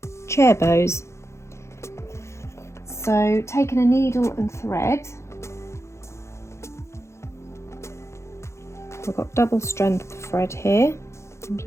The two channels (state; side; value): late; right; 0.13 ms